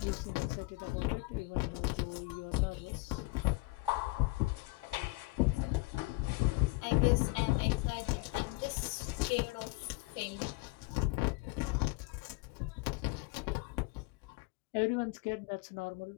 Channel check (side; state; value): right; quieter; 23.6 dB